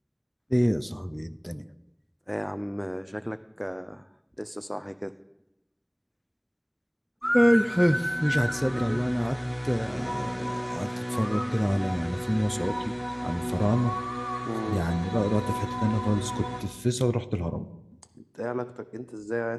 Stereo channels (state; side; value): identical; both; correlation 1.00